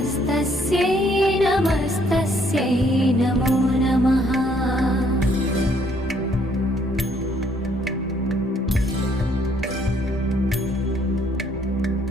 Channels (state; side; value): normal; both; correlation 0.66